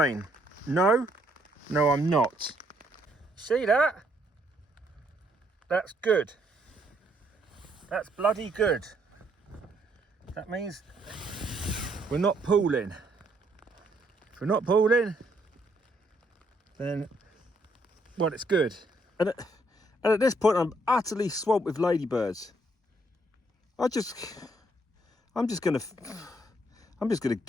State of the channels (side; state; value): both; normal; correlation 0.70